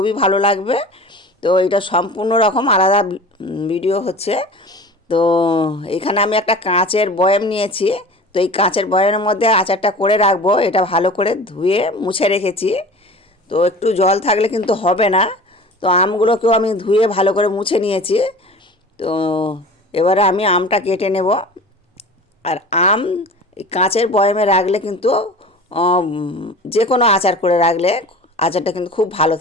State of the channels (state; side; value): normal; both; correlation 0.38